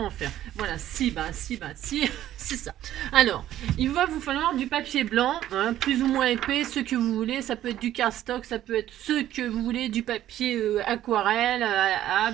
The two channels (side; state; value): left; quieter; 12.6 dB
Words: en faire. Voilà, si, c'est ça. Alors, il va vous falloir du papier blanc, hein, plus ou moins épais, ce que vous voulez. Ça peut être du cardstock, ça peut être ce que vous voulez, du papier aquarelle,